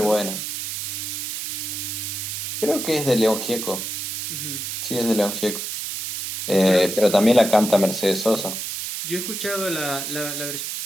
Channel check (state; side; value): noise; right; hiss, 4 dB below the sound